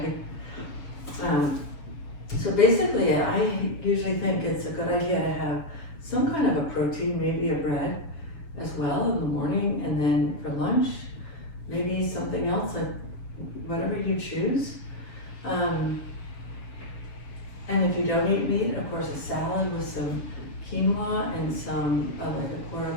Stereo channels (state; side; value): late; right; 7.0 ms